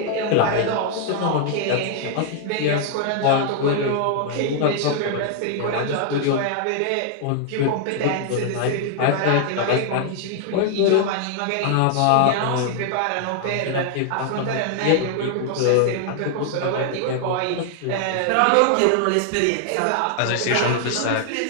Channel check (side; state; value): both; different; correlation 0.00